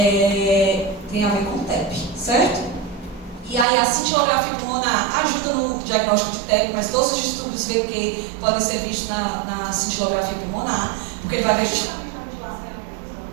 Tem a ver com TEP, certo? E aí a cintilografia pulmonar ajuda no diagnóstico de TEP, mas todos os distúrbios VQ podem ser vistos na cintilografia pulmonar, porque ele vai ver justamente a vigilação e a previsão.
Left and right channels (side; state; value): left; drops out; at 3.7 s